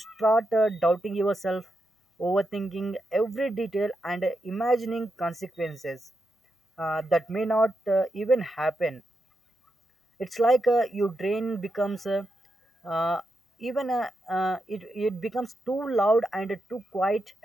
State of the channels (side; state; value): both; normal; correlation 0.85